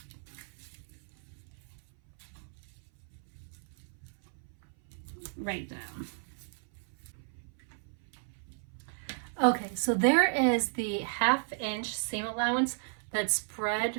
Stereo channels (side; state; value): left; silent; 55 dB below the other